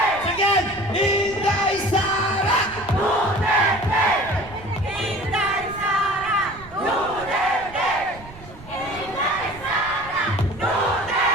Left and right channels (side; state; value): right; noise; rumble, 18 dB below the sound